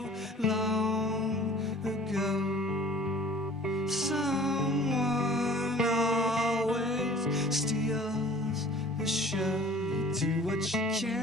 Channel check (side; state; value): both; normal; correlation 0.48